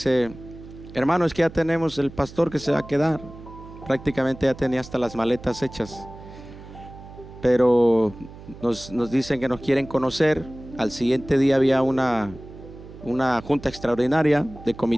hermano, es que ya tenemos el pastor que se va a quedar. Prácticamente ya tenía hasta las maletas hechas. Pero nos dicen que nos quieren conocer. Al siguiente día había una junta extraordinaria de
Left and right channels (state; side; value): noise; right; hum, 17 dB below the sound